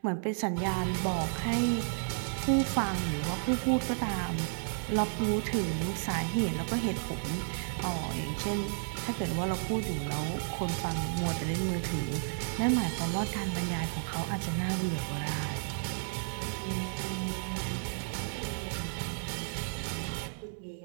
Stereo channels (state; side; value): silent; left; 56 dB below the other